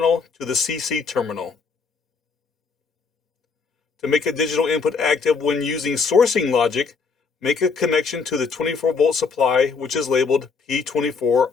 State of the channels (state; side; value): quieter; right; 5.1 dB